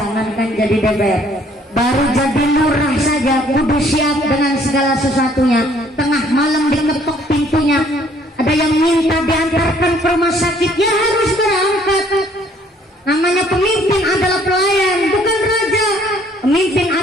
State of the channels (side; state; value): both; normal; correlation 0.61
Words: jadi DPR, baru jadi lurah saja kudu siap dengan segala sesuatunya. Tengah malam diketok pintunya, ada yang minta diantarkan ke rumah sakit, ya harus berangkat. Namanya pemimpin adalah pelayan, bukan raja. Pemimpin